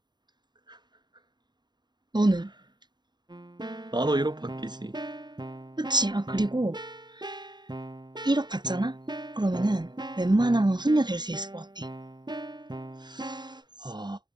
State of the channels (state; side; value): late; left; 0.21 ms